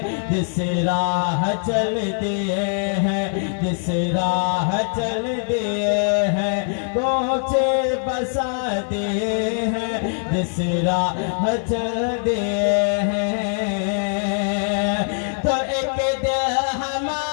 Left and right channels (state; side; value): silent; right; 56 dB below the other